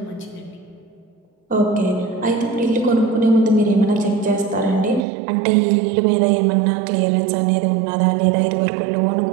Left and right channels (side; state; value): left; drops out; at 5.1 s